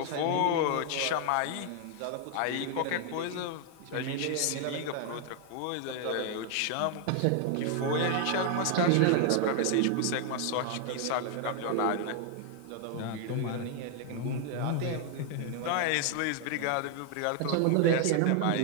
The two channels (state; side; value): different; both; correlation 0.00